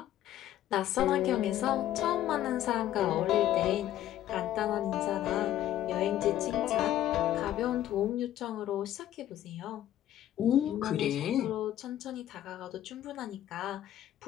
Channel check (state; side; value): quieter; right; 12.6 dB